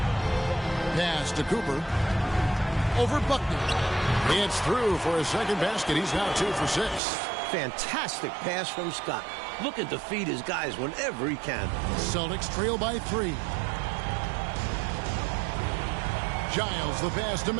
Pass to Cooper. Over Buckner. It's through for a second basket. He's now 2 for 6. Fantastic pass from Scott. Looking to feed his guys whenever he can. Celtics trail by 3. Giles, the pass to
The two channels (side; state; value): left; drops out; at 7.0 s